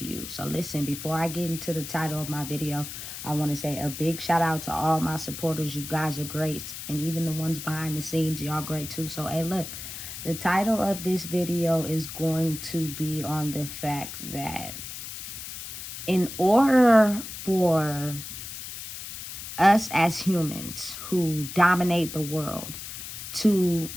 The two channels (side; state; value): left; noise; hiss, 9 dB below the sound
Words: you. So listen, before I get into the title of my video, I want to say a big shout out to all my supporters. You guys are great. And even the ones behind the scenes, y'all great too. So, hey, look, the title of this video is going to be on the fact that in order for us as humans who dominate the world to